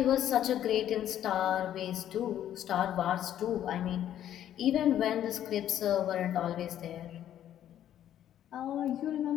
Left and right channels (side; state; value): right; quieter; 11.1 dB